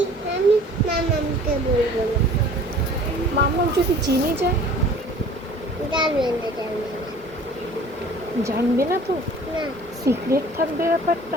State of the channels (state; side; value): normal; both; correlation 0.48